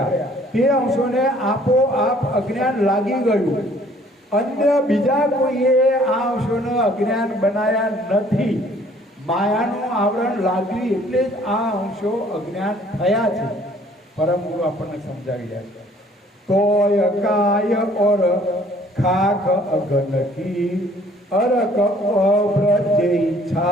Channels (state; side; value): normal; both; correlation 0.58